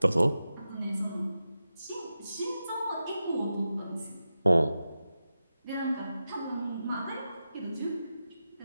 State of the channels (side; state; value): both; inverted; correlation -0.92